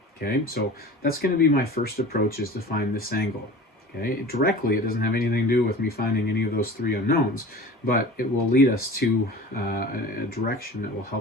Okay, so that's going to be my first approach, is to find this angle. Okay, directly it doesn't have anything to do with me finding any of those three unknowns, but it will lead us to a direction that will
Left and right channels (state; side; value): normal; both; correlation 0.38